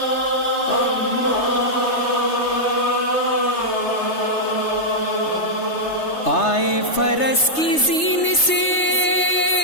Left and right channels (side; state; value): right; late; 3.3 ms